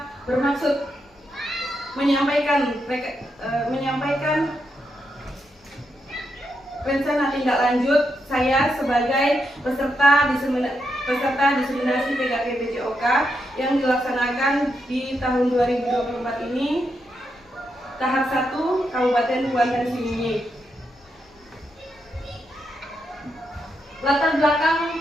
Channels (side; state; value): both; normal; correlation 0.83